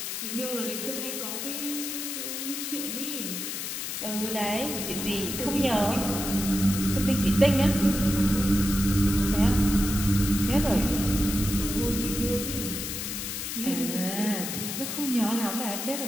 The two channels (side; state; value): left; noise; hiss, 5 dB below the sound